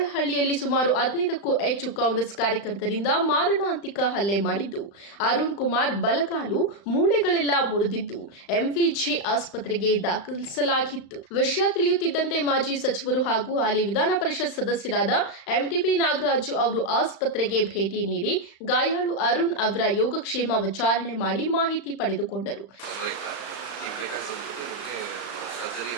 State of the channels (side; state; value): right; late; 35 ms